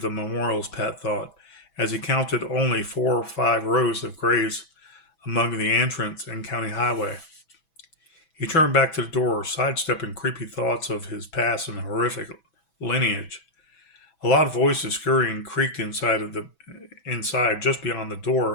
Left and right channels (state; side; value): late; right; 6.1 ms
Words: memorials, Pat thought, as he counted only 4 or 5 rows of graves among the entrance and county highway. He turned back to the door, sidestepping creepy thoughts of his past and horrific lineage. A loud voices scurrying creaked inside just beyond the